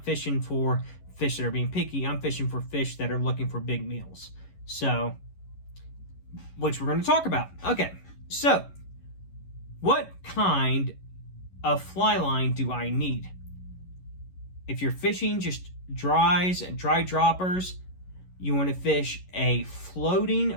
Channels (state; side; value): late; right; 11 ms